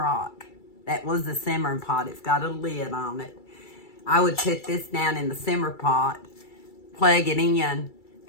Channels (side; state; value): right; late; 2.3 ms